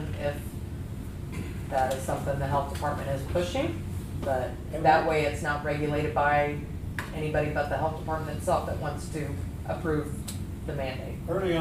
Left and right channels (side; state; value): both; identical; correlation 1.00